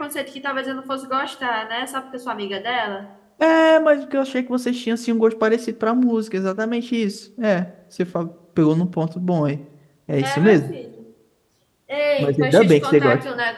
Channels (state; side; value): identical; both; correlation 1.00